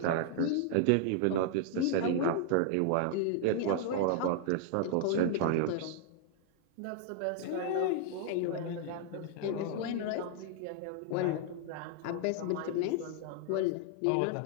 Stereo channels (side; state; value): both; different; correlation 0.00